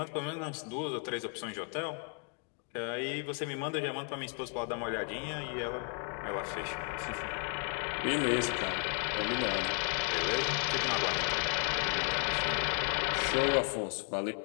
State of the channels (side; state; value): right; quieter; 35.0 dB